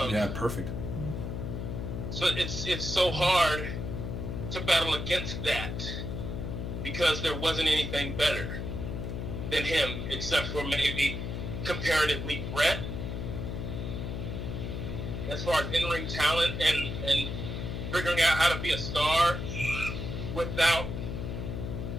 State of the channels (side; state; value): left; noise; hum, 4 dB below the sound